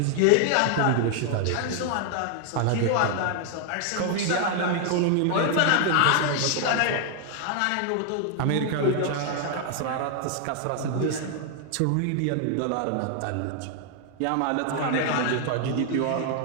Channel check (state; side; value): different; both; correlation 0.00